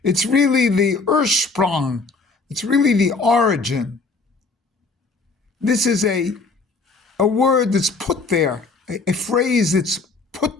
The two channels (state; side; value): quieter; right; 3.9 dB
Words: It's really the Ursprung. It's really the origin. This is a word that's put there, a phrase that's